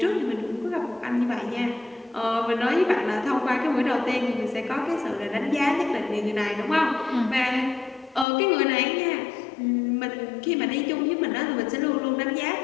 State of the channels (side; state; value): right; drops out; at 8.2 s